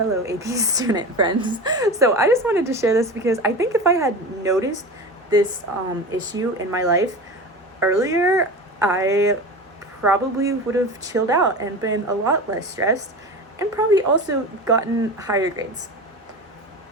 AP student friends. So I just wanted to share this because I think if I had noticed this issue in my life earlier, I probably would have chilled out and been a lot less stressed and probably also gotten higher grades.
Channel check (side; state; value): both; normal; correlation 0.29